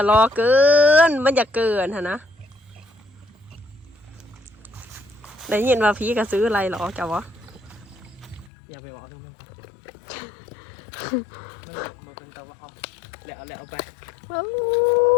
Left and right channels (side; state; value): right; drops out; at 8.5 s